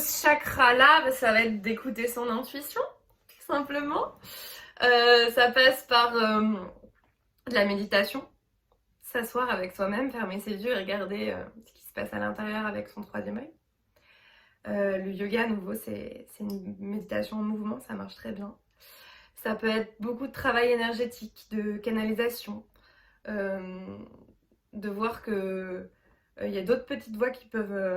chakra-là, ça va être d'écouter son intuition, tout simplement. Ça passe par de la méditation, s'asseoir avec soi-même, fermer ses yeux et regarder ce qui se passe à l'intérieur avec son troisième œil. Le yoga, à nouveau, c'est une méditation en mouvement, ça marche très bien. Ça peut être beaucoup de travail énergétique, de canalisation, de voir que y a d'autres petites voix qui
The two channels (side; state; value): both; identical; correlation 1.00